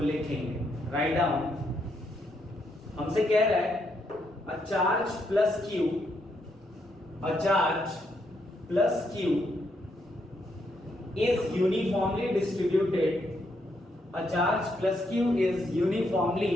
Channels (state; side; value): normal; both; correlation 0.77